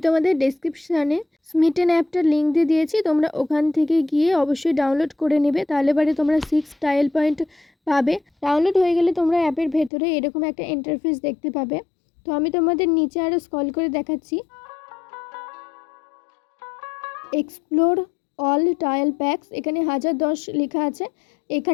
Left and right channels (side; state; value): right; drops out; at 9.9 s